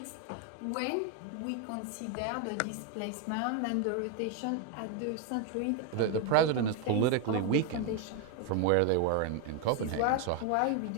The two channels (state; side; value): different; both; correlation 0.01